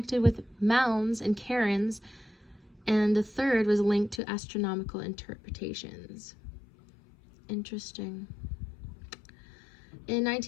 with mounds and cairns, and the third was linked to astronomical interpretations. Interesting. In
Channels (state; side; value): drops out; right; at 4.2 s